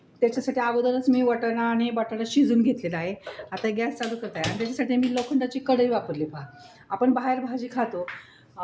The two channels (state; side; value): identical; both; correlation 1.00